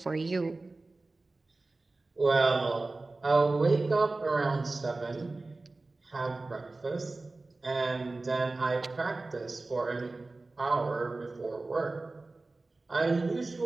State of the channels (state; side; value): quieter; left; 3.3 dB